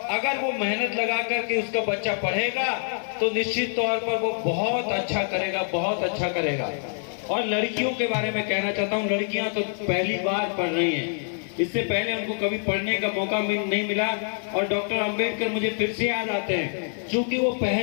अगर वो मेहनत लगा करके उसका बच्चा पढ़ेगा तो निश्चित तौर पर वो बहुत अच्छा करेगा, बहुत अच्छा करेगा। और लड़कियों के बारे में कहना चाहता हूँ, लड़कियां तो पहली बार पढ़ रही हैं, इससे पहले उनको कभी पढ़ने का मौका नहीं मिला। और डॉक्टर अंबेडकर मुझे फिर से याद आते हैं, क्योंकि वो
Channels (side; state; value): right; silent; 60 dB below the other